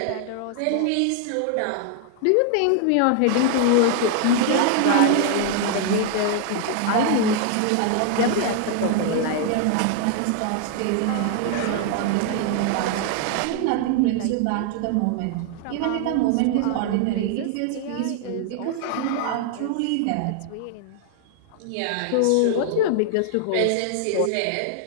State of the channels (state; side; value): different; both; correlation 0.00